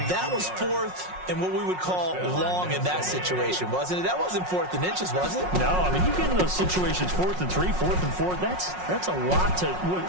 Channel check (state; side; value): late; left; 5.5 ms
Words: That was 4th and what we would call long in that situation, wasn't it? That wasn't 4th and inches, was it? No, I mean, you get in those situations 4th and 3, 4th and 4. That's a lot to,